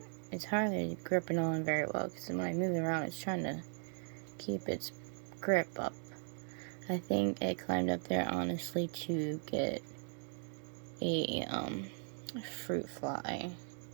it's hardly gripping on very well, because when I move it around, it's trying to keep its grip up. I think it climbed up there honestly to get a fruit fly,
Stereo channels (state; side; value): silent; left; 52 dB below the other